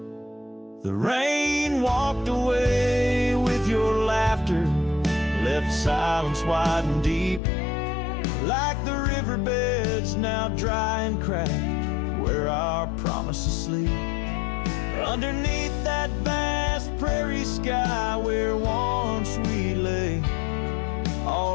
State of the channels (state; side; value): drops out; right; at 7.4 s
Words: The rain walked away with your laughter, left silence wide and deep, like the riverbeds now dry and cracked where our promises sleep. Underneath that vast prairie sky where once we lay,